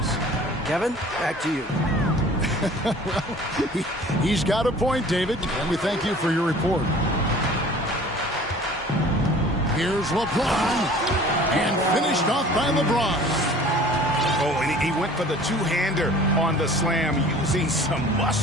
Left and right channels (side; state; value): both; normal; correlation 0.47